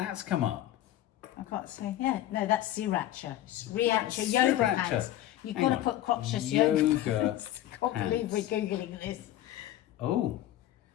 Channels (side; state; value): right; quieter; 13.3 dB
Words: come up. I can't say. Yeah, no, that's sriracha. Sriracha yoga Sriracha. pants. You've Hang got to on. put crotchless yoga Yoga pants. I can't believe we're pants. Googling this. Oh.